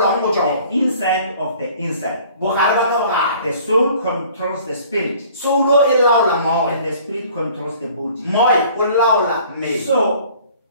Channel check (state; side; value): inverted; both; correlation -0.52